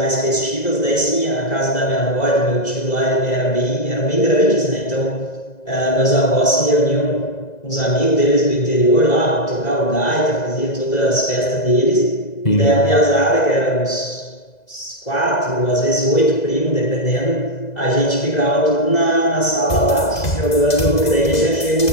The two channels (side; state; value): right; late; 2.0 ms